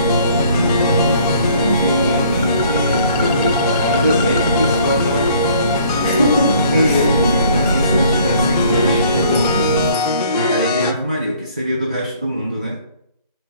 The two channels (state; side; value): inverted; both; correlation -0.58